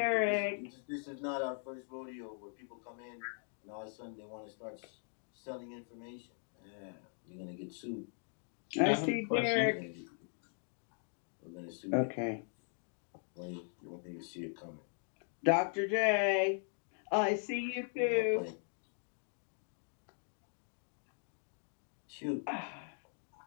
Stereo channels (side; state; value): right; silent; 51 dB below the other